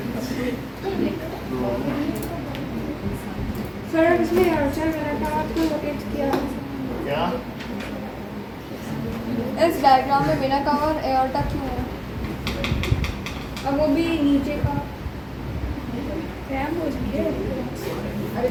सर इसमें अर्चर मैंने कहा आपको लोकेट किया क्या इस डायग्राम में बिना कवर एयरटा क्यों है? अब वो भी नीचे का हो है। अरे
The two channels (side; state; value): both; identical; correlation 1.00